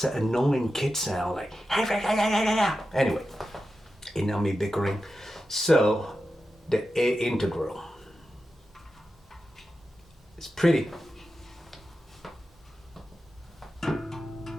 an annoying kid sound, like, anyway, enough me bickering. So, the A integral. It's pretty.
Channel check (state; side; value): normal; both; correlation 0.91